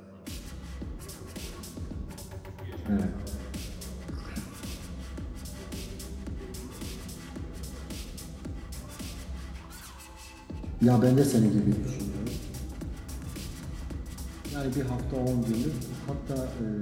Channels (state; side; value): identical; both; correlation 1.00